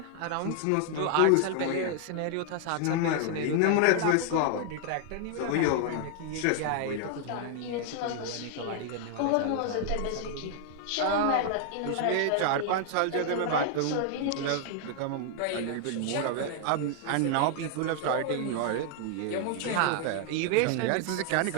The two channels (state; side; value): different; both; correlation 0.00